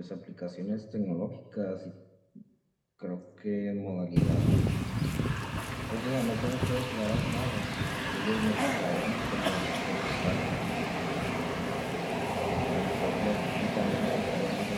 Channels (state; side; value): identical; both; correlation 1.00